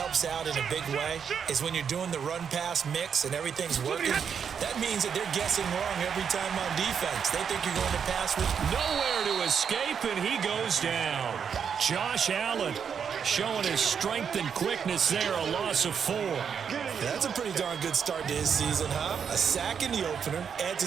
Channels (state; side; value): quieter; left; 7.2 dB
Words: out in a big way is when you're doing the run-pass mix and everything's working, that means that they're guessing wrong every time on defense. They think you're going to pass with nowhere to escape, and he goes down. Josh Allen showing his strength and quickness there, a loss of 4. That's a pretty darn good start to his season, huh? A sack in the opener, adds